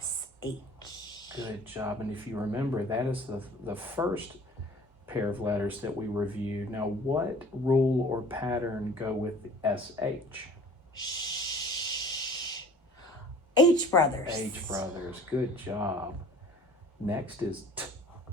Good job. And if you remember, that is the first pair of letters that we reviewed. Now, what rule or pattern go with SH? Sh. H brothers. H brothers. Good job. Next is T.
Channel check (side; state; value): both; normal; correlation 0.48